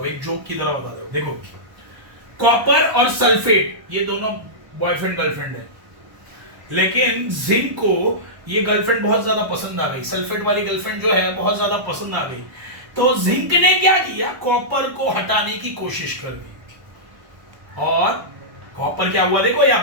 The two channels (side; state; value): left; late; 1.1 ms